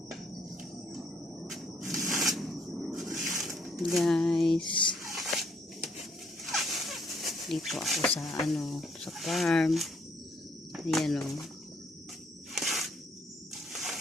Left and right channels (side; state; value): both; normal; correlation 0.68